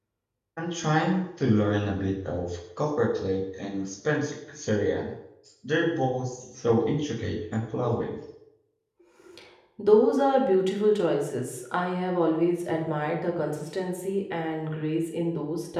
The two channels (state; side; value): identical; both; correlation 1.00